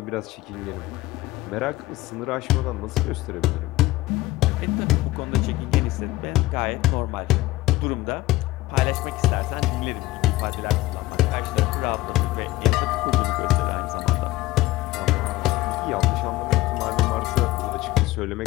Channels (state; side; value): quieter; right; 17.8 dB